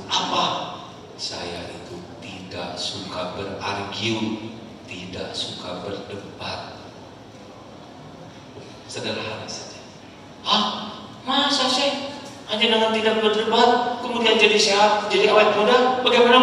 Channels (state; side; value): identical; both; correlation 1.00